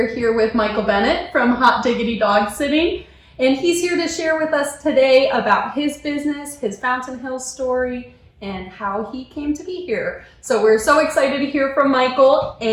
here with Michael Bennett from Hot Diggity Dog Sitting. And he's here to share with us today about his business, his Fountain Hills story, and how he came to be here. So we're so excited to hear from Michael,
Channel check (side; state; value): both; identical; correlation 1.00